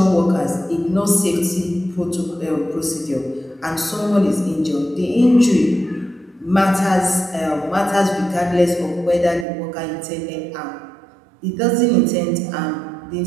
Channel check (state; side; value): drops out; left; at 9.5 s